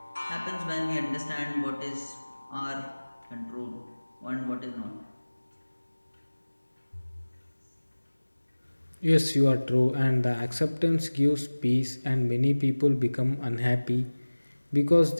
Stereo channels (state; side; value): inverted; both; correlation -1.00